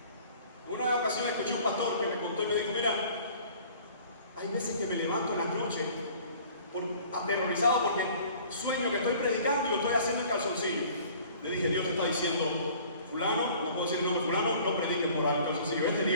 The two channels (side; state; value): both; inverted; correlation -0.50